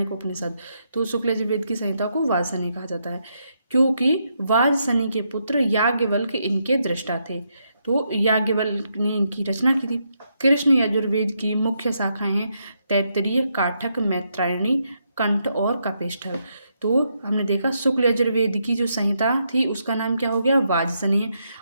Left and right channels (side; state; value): both; inverted; correlation -0.79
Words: उपनिषद। तो शुक्ल यजुर्वेद की संहिता को वाजसनेय कहा जाता है, क्योंकि वाजसनेय के पुत्र याज्ञवल्क्य इनके दृष्टा थे। तो याज्ञवल्क्य ने इनकी रचना की थी। कृष्ण यजुर्वेद की मुख्य शाखाएं हैं तैत्तिरीय, काठक, मैत्रायणी, कंठ और कपिष्ठल। तो हमने देखा शुक्ल यजुर्वेद की जो संहिता थी उसका नाम क्या हो गया,